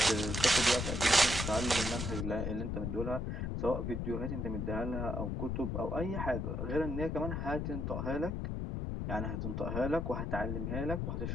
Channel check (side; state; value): left; noise; rumble, 2 dB below the sound